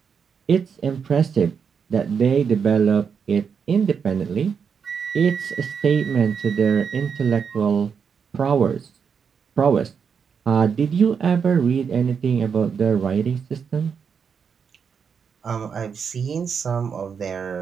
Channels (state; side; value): quieter; left; 6.6 dB